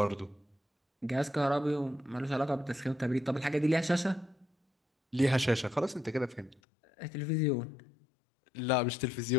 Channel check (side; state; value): right; drops out; at 6.6 s